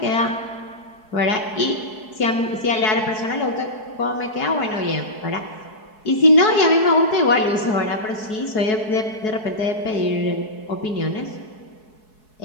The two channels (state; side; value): late; right; 4.7 ms